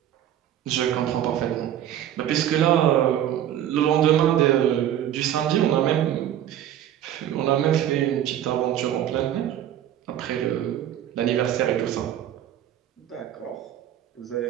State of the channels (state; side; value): quieter; left; 11.2 dB